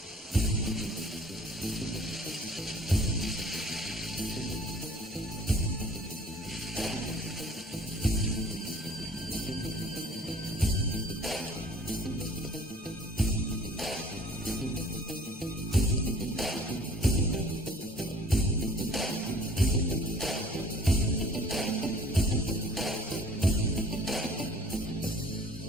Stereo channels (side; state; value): both; normal; correlation 0.52